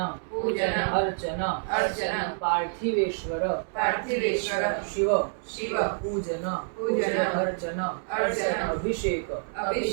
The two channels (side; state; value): left; silent; digital silence